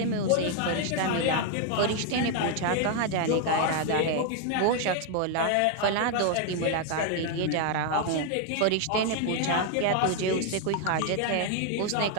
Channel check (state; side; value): different; both; correlation 0.00